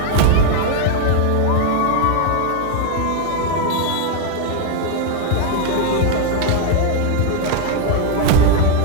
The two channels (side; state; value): both; different; correlation 0.01